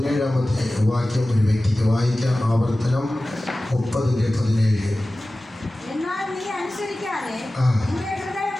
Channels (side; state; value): both; normal; correlation 0.96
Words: വാക്യം ഒരു വ്യക്തിക്ക് വായിക്കാം. ആവർത്തനം 30:17. എന്നാൽ നീ അനുസരിക്കാതെ നിന്റെ ഹൃദയം